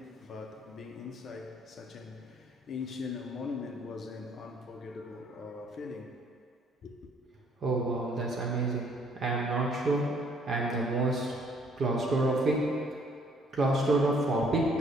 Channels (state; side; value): normal; both; correlation 0.63